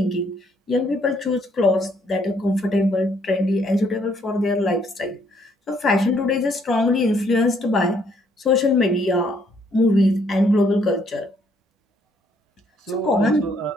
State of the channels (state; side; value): normal; both; correlation 0.68